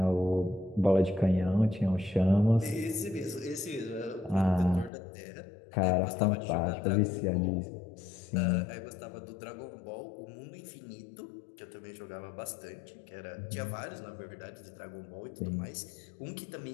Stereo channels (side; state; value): right; drops out; at 4.9 s